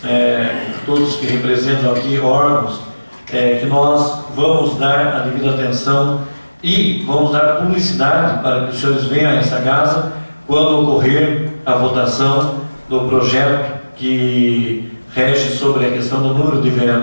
todos que representam aqui órgãos, que nós vamos dar a devida atenção e vamos dar publicidade para que os senhores venham a essa casa quando ocorrer a votação do projeto que rege sobre a questão do número de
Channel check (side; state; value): both; inverted; correlation -1.00